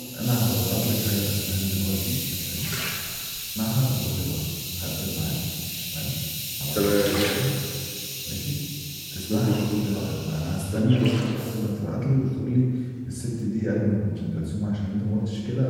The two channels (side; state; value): both; identical; correlation 1.00